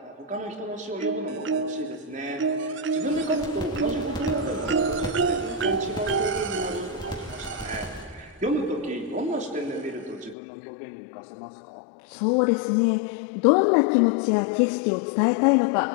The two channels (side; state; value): right; drops out; at 10.4 s